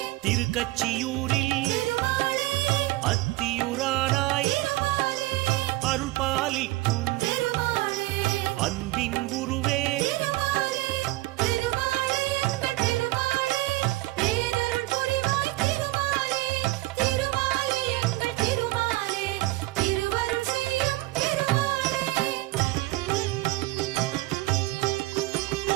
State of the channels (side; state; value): left; quieter; 20.1 dB